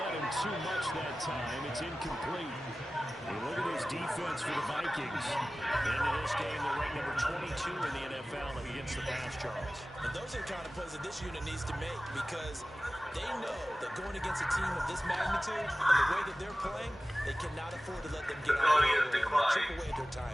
him too much that time. It's incomplete. And look at this defense for the Vikings. Into this game, they're ranked number 22 in the NFL against the pass, Charles. And those are the kind of plays that this unit needs to make, because they know that going against a team of this magnitude and the way that they're playing, they cannot afford to let them get out of the way and chip away at their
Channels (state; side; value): normal; both; correlation 0.96